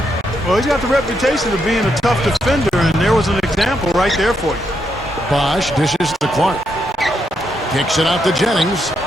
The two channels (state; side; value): normal; both; correlation 0.79